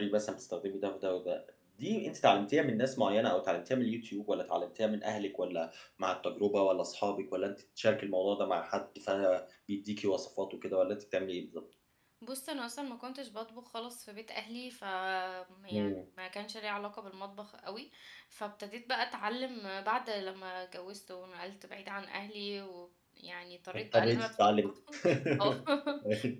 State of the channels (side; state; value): both; identical; correlation 1.00